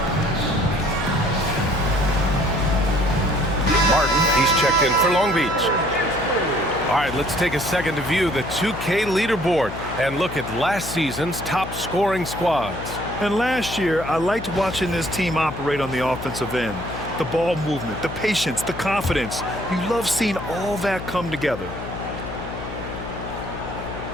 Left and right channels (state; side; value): noise; left; hum, 9 dB below the sound